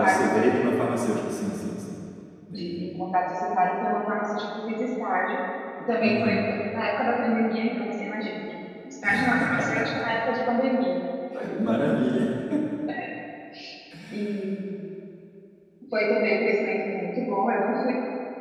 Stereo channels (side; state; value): both; identical; correlation 1.00